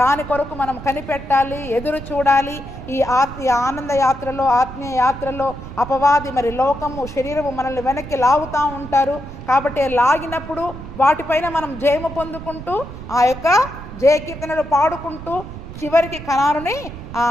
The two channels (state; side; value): noise; right; rumble, 12 dB below the sound